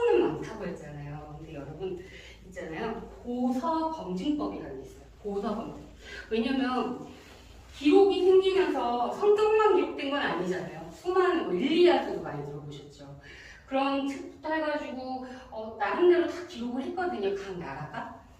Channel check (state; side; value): identical; both; correlation 1.00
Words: 많다고 했잖아요. 근데 여러분 있잖아요. 보서 검증법이라는 게 있어요. 보서 검증. 왜냐면 기록이 생기면서 성경만 기록된 건 아니잖아요. 수많은 일리아드도 많이 들어보셨죠. 그런 책부터 해가지고 나름대로 다 기록을 했거든요. 각 나라가.